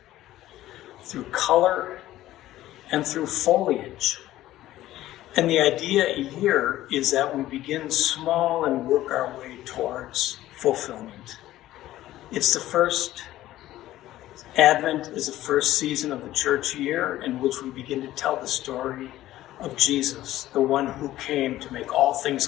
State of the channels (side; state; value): right; quieter; 14.7 dB